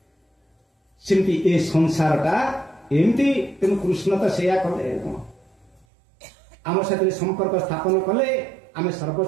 सेमती ए संसारटा एमती तेणु कृष्ण तो सेया कले आम साथ संपर्क स्थापन कले आम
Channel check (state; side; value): drops out; left; at 5.9 s